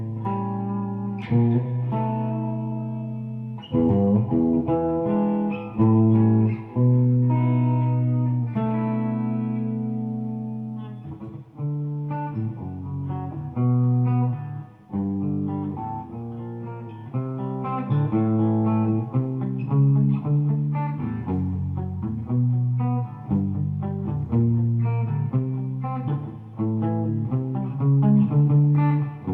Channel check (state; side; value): identical; both; correlation 1.00